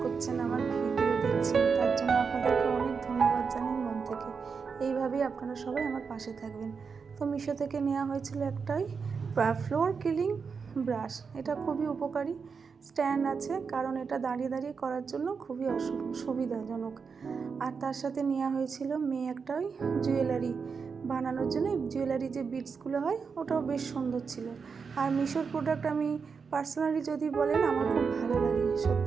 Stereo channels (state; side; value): quieter; left; 5.5 dB